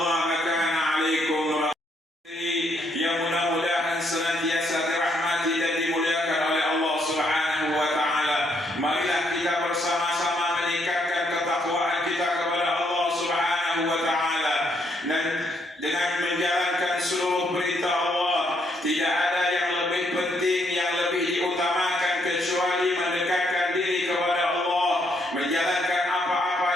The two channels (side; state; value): both; normal; correlation 0.73